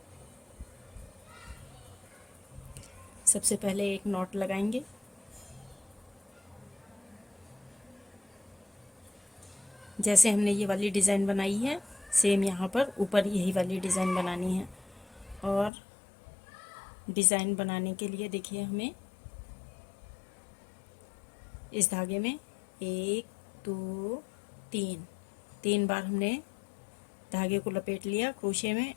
सबसे पहले एक नॉट लगाएंगे, जैसे हमने ये वाली डिज़ाइन बनाई है सेम यहाँ पर ऊपर यही वाली डिज़ाइन बनानी है। और डिज़ाइन बनाने के लिए देखिए हमें इस धागे में 1 2 3 बार हमने धागे को लपेट लिया क्रोशे में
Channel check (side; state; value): right; drops out; at 15.7 s